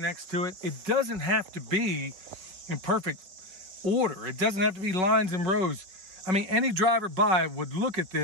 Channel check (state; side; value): late; left; 5.4 ms